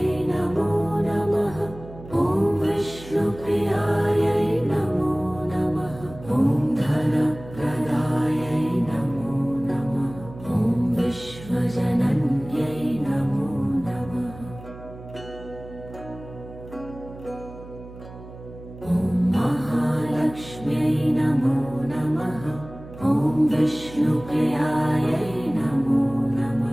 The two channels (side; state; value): right; noise; hum, 16 dB below the sound